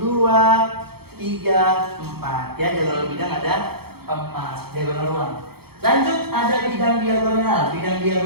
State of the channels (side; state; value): left; late; 0.96 ms